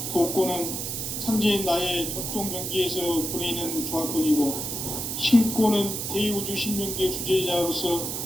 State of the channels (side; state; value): right; noise; hiss, 4 dB below the sound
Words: 독권은 상제인 나의 도통 경계에서 부리는 조합권이고, 신권은 대우주 신명계 주제자로서